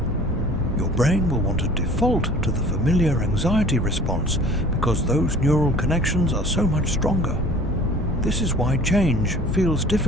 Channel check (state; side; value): normal; both; correlation 0.47